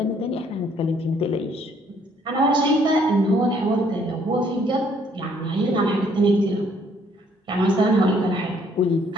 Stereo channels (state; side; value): normal; both; correlation 0.64